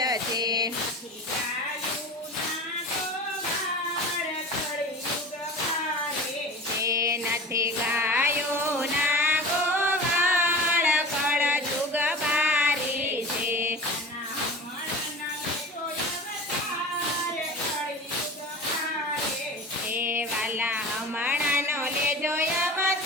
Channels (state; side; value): normal; both; correlation 0.35